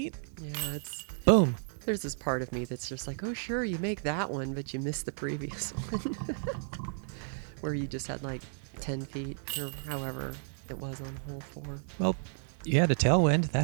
Yeah, it's... Boom. There's this part of me that's just like, oh, sure, you make that one, but you missed the previous one. Where you just had like 10 feet or however it was on hole 4. Well, you had a tailwind.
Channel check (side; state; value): left; silent; 56 dB below the other